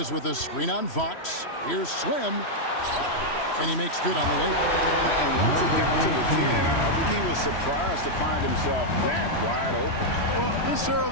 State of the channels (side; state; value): right; late; 3.1 ms